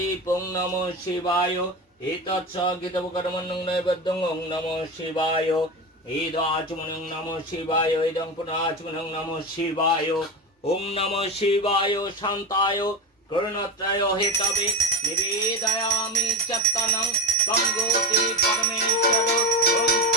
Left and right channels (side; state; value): both; normal; correlation 0.21